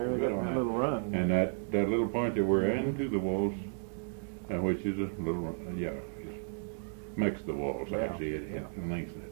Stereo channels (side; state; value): left; silent; digital silence